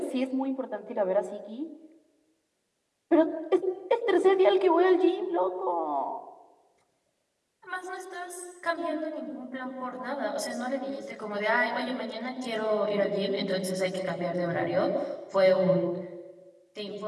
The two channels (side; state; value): both; identical; correlation 1.00